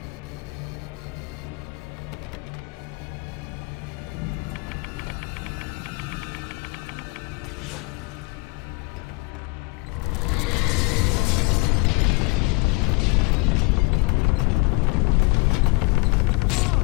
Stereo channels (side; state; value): right; quieter; 27.3 dB